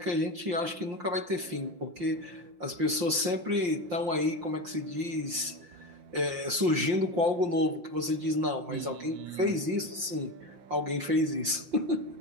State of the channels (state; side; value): late; left; 5.7 ms